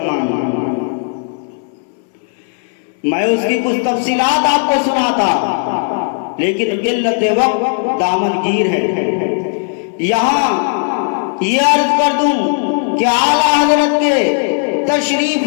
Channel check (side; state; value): right; silent; 61 dB below the other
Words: میں۔ میں اس کی کچھ تفصیلات آپ کو سناتا، لیکن قلت وقت دامن گیر ہے۔ یہاں یہ عرض کر دوں کہ اعلیٰ حضرت کے تشریف